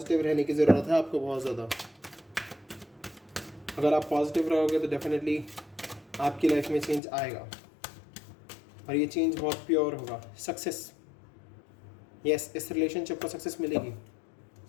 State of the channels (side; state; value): right; drops out; at 7.0 s